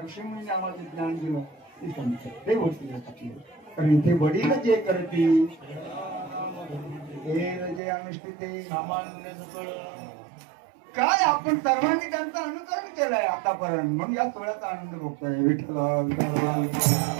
ऋषीमुनी आम्हाला ज्ञान दिलं ते संत ते वडील असतात. कारण इथे वडील जे करतील हे जे अनुष्ठित काय आपण सर्वांनी त्यांचं अनुकरण केलंय आतापर्यंत. म्हणून या सोहळ्याचा आनंद भोगतोय. विठ्ठल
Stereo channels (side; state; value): left; drops out; at 7.8 s